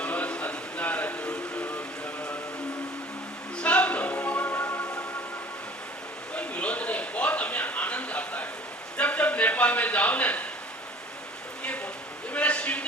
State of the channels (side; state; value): both; normal; correlation 0.48